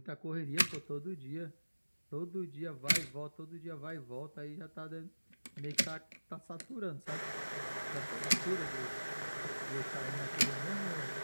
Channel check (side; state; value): both; inverted; correlation -1.00